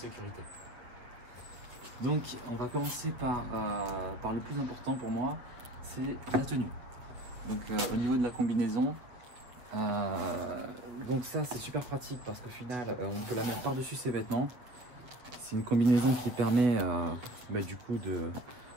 Donc on va commencer par le plus important pour moi, c'est la tenue. Donc au niveau de la combinaison, donc ça c'est super pratique parce qu'au final on peut la mettre par-dessus ses vêtements. C'est une combinaison qui permet du coup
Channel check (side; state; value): left; late; 8.2 ms